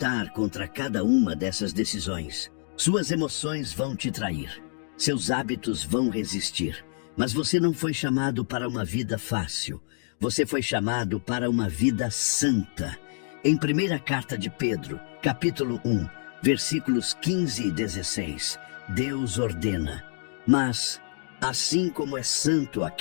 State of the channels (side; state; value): right; silent; digital silence